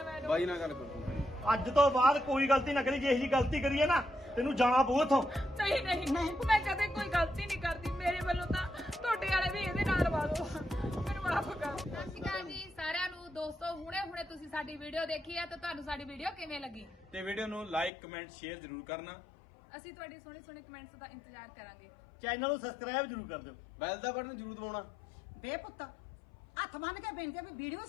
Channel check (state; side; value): drops out; right; at 17.9 s